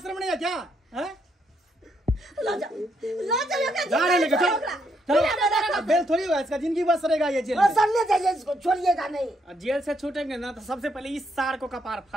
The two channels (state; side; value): normal; both; correlation 0.75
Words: रमणे है क्या हैं ला जाओ एकरा जा रहे लेके चलो बेल थोड़ी होगा इसका जिंदगी बस रहेगा ये जेल में सर ले जाइए इसको छोड़िएगा नहीं जेल से छूटेंगे ना तो सबसे पहले इस सार को कपार